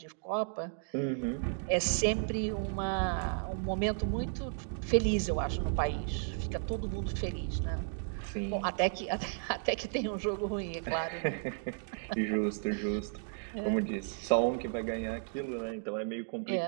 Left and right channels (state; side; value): silent; left; digital silence